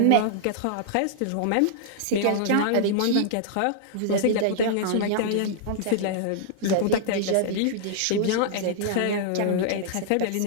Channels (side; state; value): both; different; correlation -0.01